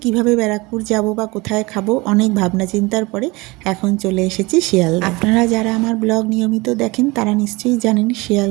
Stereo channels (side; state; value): left; quieter; 23.7 dB